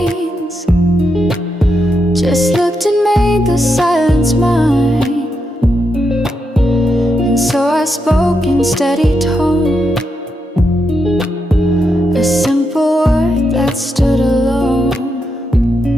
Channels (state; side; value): normal; both; correlation 0.84